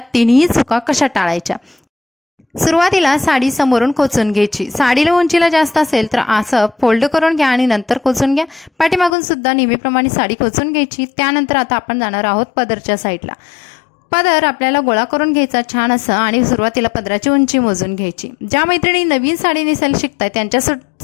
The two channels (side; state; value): right; drops out; at 9.2 s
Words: तिन्ही चुका कशा टाळायच्या। सुरुवातीला साडी समोरून खोचून घ्यायची। साडीला उंचीला जास्त असेल तर असं फोल्ड करून घ्या आणि नंतर खोचून घ्या। पाठीमागून सुद्धा नेहमीप्रमाणे साडी खोचून घ्यायची। त्यानंतर आता आपण जाणार आहोत पदरच्या साईडला। पदर आपल्याला गोळा करून घ्यायचा छान असं आणि सुरुवातीला पदराची उंची मोजून घ्यायची। ज्या मैत्रिणी नवीन साडी नेसायला शिकताय